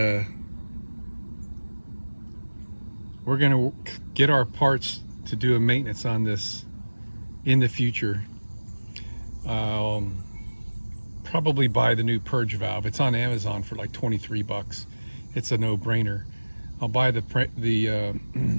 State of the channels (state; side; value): inverted; both; correlation -1.00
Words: we're gonna get our parts to do a maintenance on this in the future. Probably buy the new purge valve. It's on Amazon for like 23 bucks. It's a no-brainer. I'll buy the